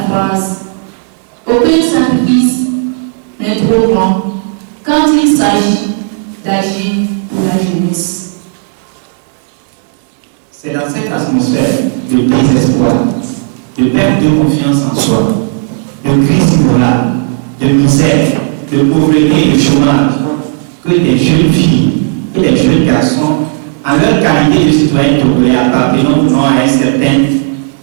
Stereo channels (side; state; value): left; silent; digital silence